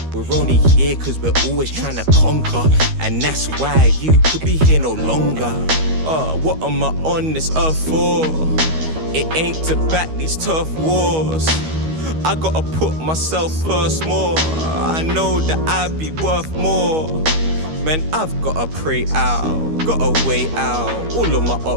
We're only here cause we're always trying to conquer, and that's why you could be here no longer. What am I on this earth for? It ain't to back these tough wars. I gotta put myself first more. I know that I'd be worth more. Man, I've gotta pray out, gotta weigh out all of my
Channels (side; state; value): left; late; 13 ms